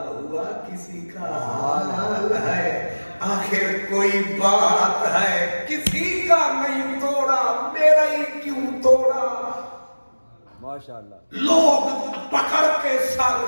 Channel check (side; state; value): both; inverted; correlation -1.00